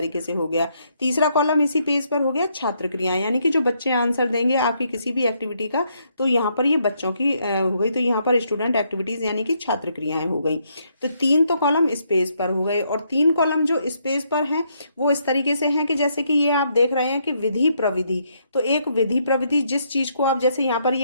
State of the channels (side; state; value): both; inverted; correlation -0.74